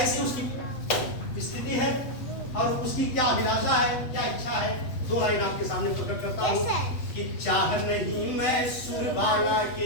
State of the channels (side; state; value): right; late; 8.2 ms